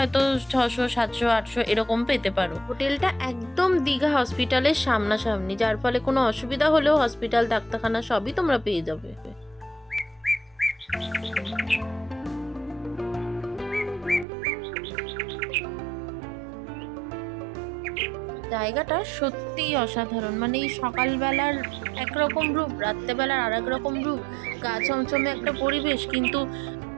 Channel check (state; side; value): drops out; left; at 14.2 s